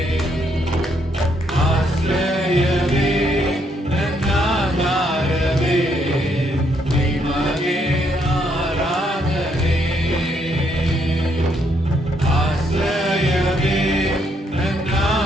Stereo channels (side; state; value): both; normal; correlation 0.73